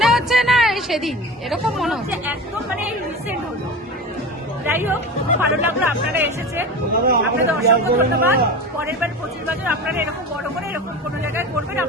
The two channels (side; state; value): both; normal; correlation 0.30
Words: হচ্ছে না সেদিন এরকম মনে হচ্ছে, একদম মানে রিসেন্ট হলো। যাই হোক, খুব ভালো লাগলো আপনারা এসেছেন, আপনাদের অসংখ্য ধন্যবাদ। পরের বার 25 বছর আপনারা এরকম বড় করে এরকম কোনো জায়গায় করবেন,